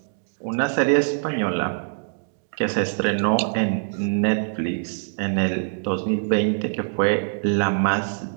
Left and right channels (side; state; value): left; silent; digital silence